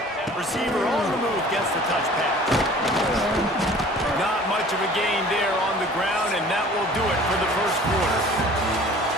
Receiver on the move gets the touch pass. Not much of a gain there on the ground, and that will do it for the first quarter.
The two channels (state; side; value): normal; both; correlation 0.47